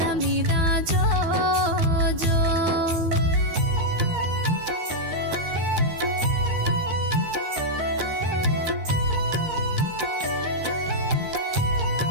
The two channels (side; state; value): left; late; 13 ms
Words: మీద జో జో